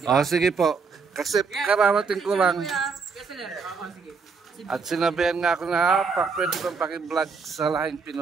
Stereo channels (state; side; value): quieter; left; 5.1 dB